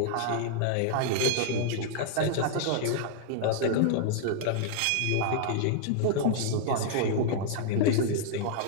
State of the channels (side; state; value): both; different; correlation -0.01